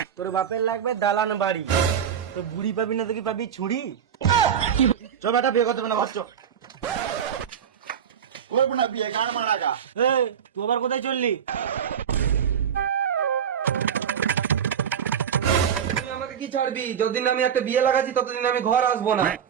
তোর বাপের লাগবে দালান বাড়ি, তো বুড়ি পাবি না তো কি পাবি? ছুরি। চল বেটা, বিয়ে করতে হবে না, বাচ্চা। তুই আবার কোথায় চললি? তুই আমাকে কি ছাড়বি? যতদিন আমি একটা বিয়ে লাগাচ্ছি ততদিন আমি ঘর আসবো না।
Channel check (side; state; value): left; quieter; 8.3 dB